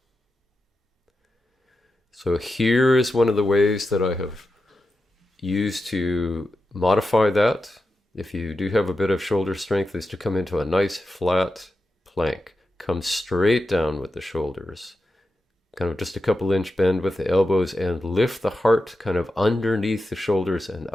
So here is one of the ways that I have used to modify that, if you do have a bit of shoulder strength, is to come into a nice flat plank. Come straight down with the shoulders, kind of just a couple inch bend with the elbows, and lift the heart kind of underneath the shoulders and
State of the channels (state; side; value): normal; both; correlation 0.90